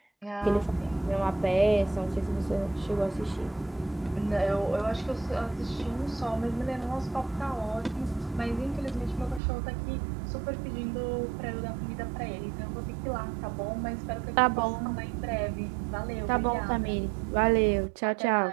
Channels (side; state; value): left; drops out; at 9.4 s